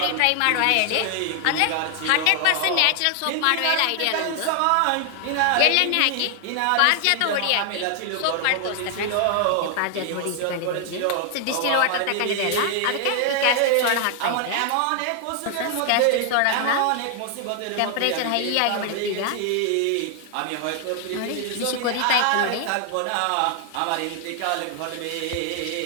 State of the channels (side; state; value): both; different; correlation 0.00